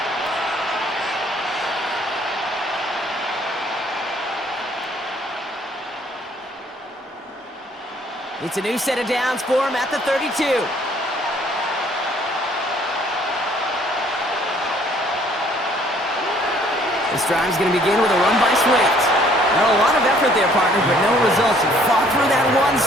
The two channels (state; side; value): normal; both; correlation 0.60